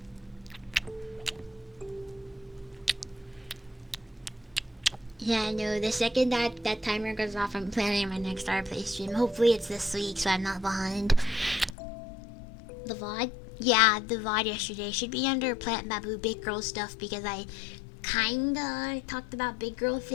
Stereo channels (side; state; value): right; drops out; at 11.7 s